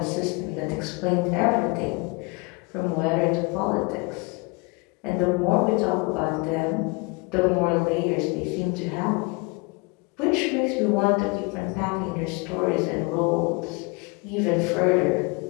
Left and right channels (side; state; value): right; quieter; 28.9 dB